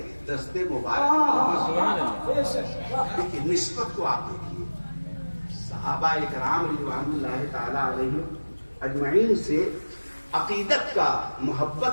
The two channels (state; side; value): inverted; both; correlation -1.00